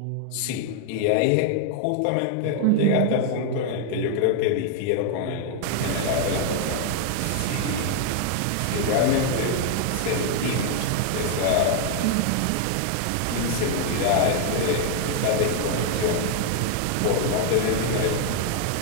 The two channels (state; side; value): different; both; correlation 0.00